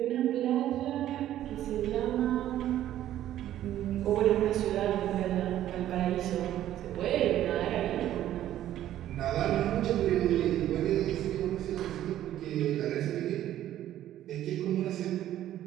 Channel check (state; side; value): quieter; left; 12.5 dB